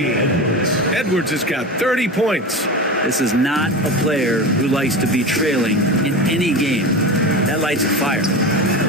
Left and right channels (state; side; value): normal; both; correlation 0.26